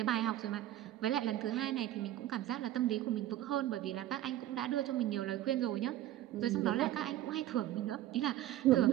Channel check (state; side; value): quieter; left; 13.6 dB